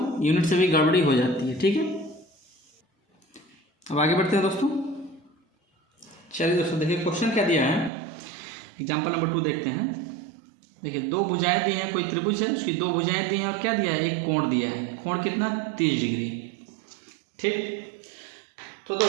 यूनिट से भी गड़बड़ी हो जाती है। ठीक है, अब आगे बढ़ते हैं दोस्तों। चलिए दोस्तों देखिए क्वेश्चन क्या दिया है, एग्जाम्पल नंबर 2 देखते हैं। देखिए दो भुजाएं दी हैं, कोई त्रिभुज है, उसकी दो भुजाएं दी हैं और क्या दिया है, एक कोण दिया है। कोण कितना, 30 डिग्री। ठीक, तो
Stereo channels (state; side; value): drops out; left; at 7.9 s